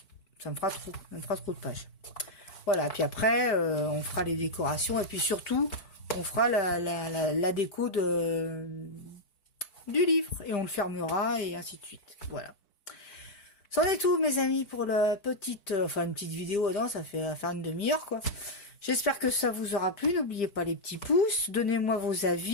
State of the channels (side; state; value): right; late; 5.0 ms